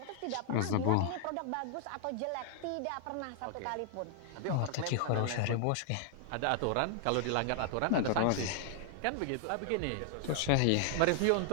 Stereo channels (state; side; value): different; both; correlation 0.00